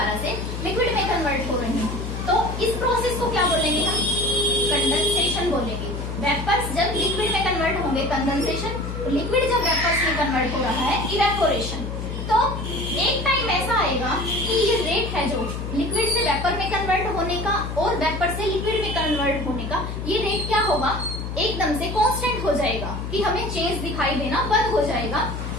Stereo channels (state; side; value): noise; left; hum, 5 dB below the sound